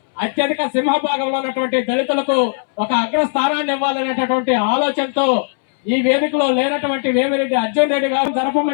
అత్యధిక సింహభాగంలో ఉన్నటువంటి దళితులకు ఒక అగ్రస్థానాన్ని ఇవ్వాలనేటటువంటి ఆలోచనతో ఈ వేదికలో లేనటువంటి వేమిరెడ్డి అర్జున్ రెడ్డి గారు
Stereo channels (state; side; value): silent; right; 68 dB below the other